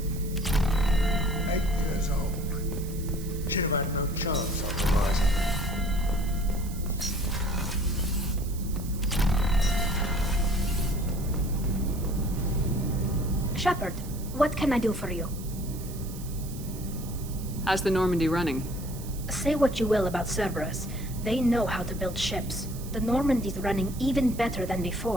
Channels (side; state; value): right; noise; hiss, 16 dB below the sound